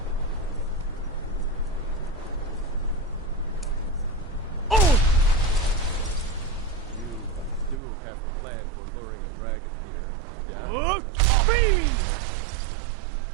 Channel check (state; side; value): drops out; left; at 7.8 s